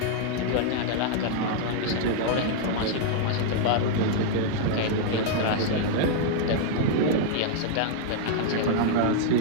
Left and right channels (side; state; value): both; different; correlation -0.01